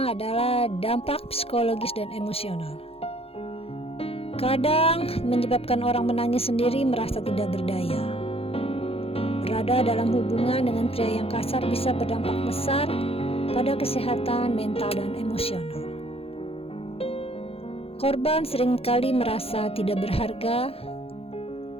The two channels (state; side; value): late; right; 0.28 ms